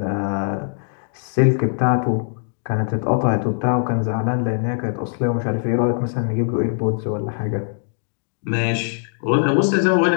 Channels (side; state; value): right; silent; digital silence